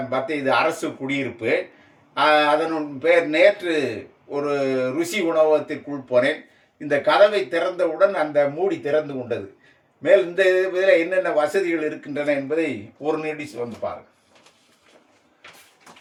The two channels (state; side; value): identical; both; correlation 1.00